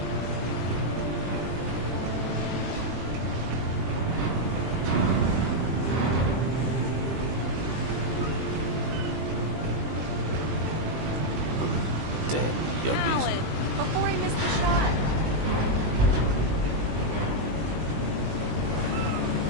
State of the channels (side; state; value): left; late; 20 ms